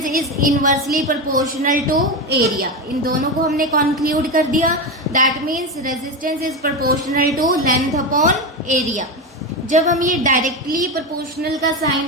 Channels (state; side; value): normal; both; correlation 0.16